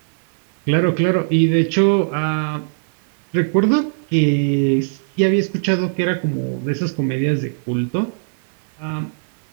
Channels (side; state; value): left; silent; digital silence